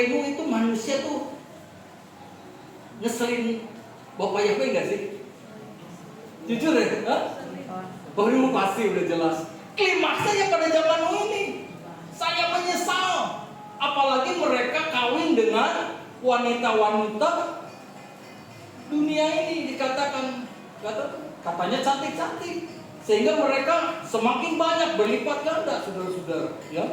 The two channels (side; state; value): both; identical; correlation 1.00